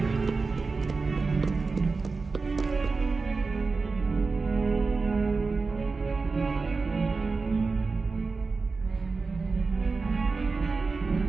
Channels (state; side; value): quieter; left; 4.2 dB